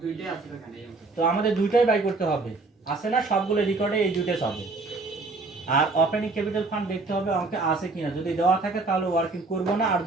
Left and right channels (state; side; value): quieter; left; 3.6 dB